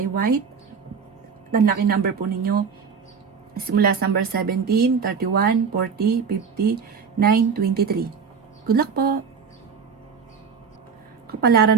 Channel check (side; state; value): left; quieter; 6.1 dB